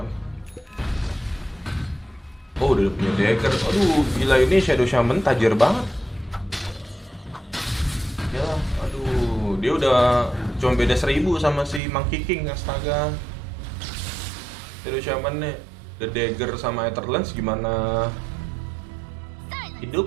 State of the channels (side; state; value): left; drops out; at 11.8 s